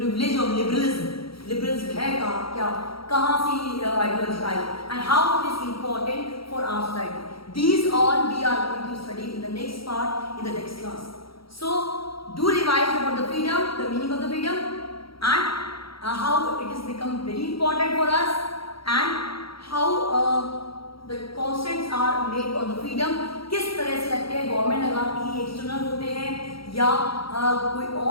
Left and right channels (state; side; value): late; right; 0.75 ms